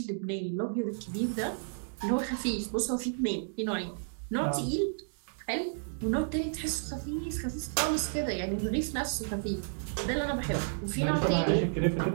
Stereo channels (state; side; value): silent; left; digital silence